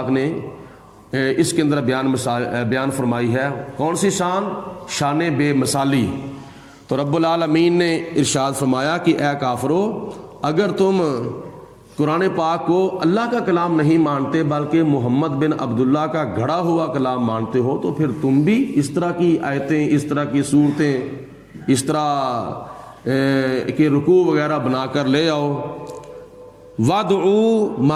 نے اس کے اندر بیان فرمائی ہے۔ کون سی شان؟ شان بے مثالی۔ تو رب العالمین نے ارشاد فرمایا کہ اے کافرو، اگر تم قرآن پاک کو اللہ کا کلام نہیں مانتے بلکہ محمد بن عبداللہ کا گھڑا ہوا کلام مانتے ہو، تو پھر تم بھی اس طرح کی آیتیں، اس طرح کی صورتیں، اس طرح کے رکوع وغیرہ بنا کر لے آؤ۔ وَادْعُوا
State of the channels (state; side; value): identical; both; correlation 1.00